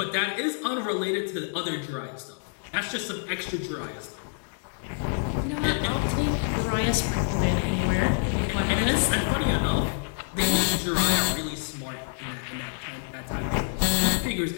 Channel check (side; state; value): right; silent; digital silence